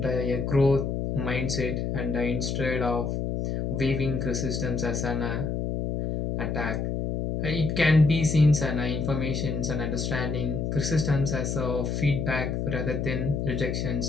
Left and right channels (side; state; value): left; noise; hum, 1 dB below the sound